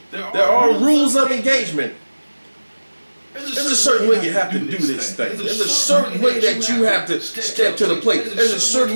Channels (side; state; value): both; inverted; correlation -1.00